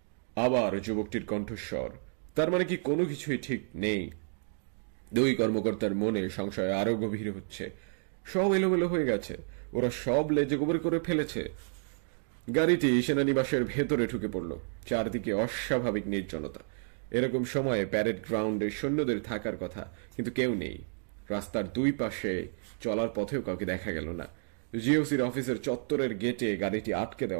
আবার যুবকটির কণ্ঠস্বর, তার মানে কি কোনো কিছুই ঠিক নেই? দুই কর্মকর্তার মনে সংশয় আরো গভীর হচ্ছে। সব এলোমেলো হয়ে গেছে, ওরা সব লেজে গোবর করে ফেলেছে। গাড়িটি সেনানিবাসের ভেতরে ঢুকে পড়ল। চারদিকে অস্বাভাবিক নির্জনতা। এরকম সময়ে প্যারেড গ্রাউন্ডে সৈন্যদের থাকার কথা, কিন্তু কেউ নেই। রাস্তার দুই পাশে চলার পথেও কাউকে দেখা গেল না। জিওসির অফিসের চত্বরের গেটে গাড়িটি আটকে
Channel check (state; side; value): silent; left; digital silence